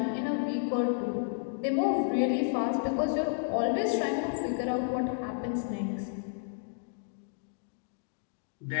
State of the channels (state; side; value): silent; right; digital silence